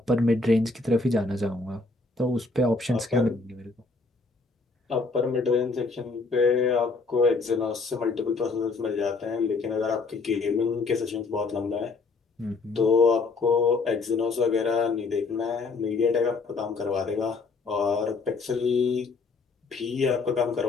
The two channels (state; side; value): quieter; right; 3.9 dB